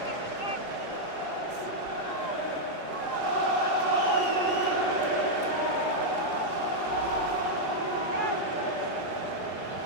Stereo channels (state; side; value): late; right; 4.8 ms